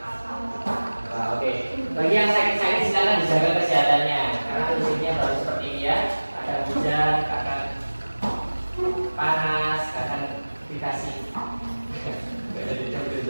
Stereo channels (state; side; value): inverted; both; correlation -1.00